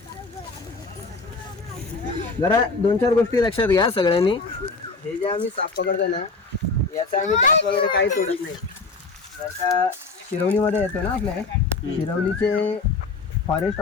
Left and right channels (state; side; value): quieter; right; 4.0 dB